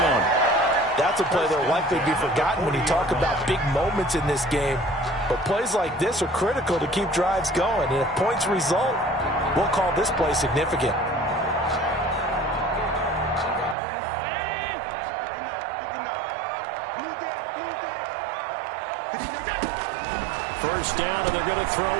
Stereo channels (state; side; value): drops out; left; at 13.8 s